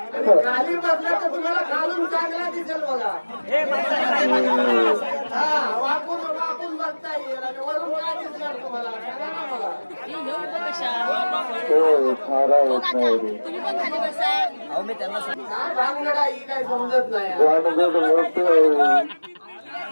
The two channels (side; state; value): both; inverted; correlation -1.00